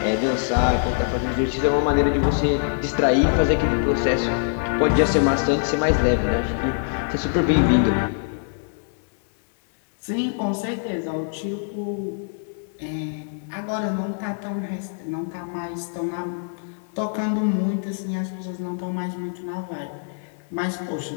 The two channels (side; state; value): right; silent; 63 dB below the other